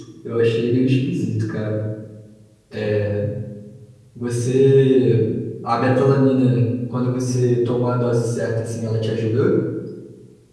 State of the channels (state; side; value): identical; both; correlation 1.00